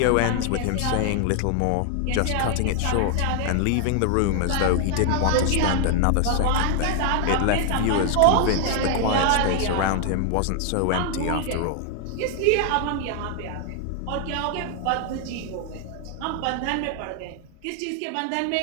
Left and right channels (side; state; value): both; different; correlation 0.00